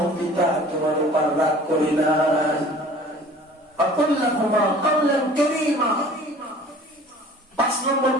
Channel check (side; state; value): both; normal; correlation 0.47